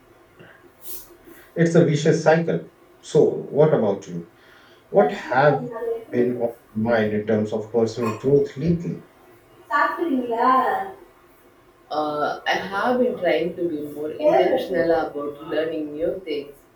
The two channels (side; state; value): both; identical; correlation 1.00